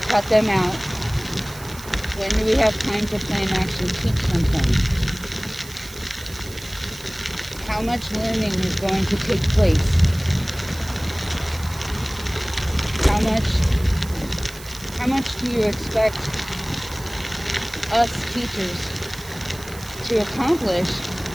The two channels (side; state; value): right; noise; hiss, 16 dB below the sound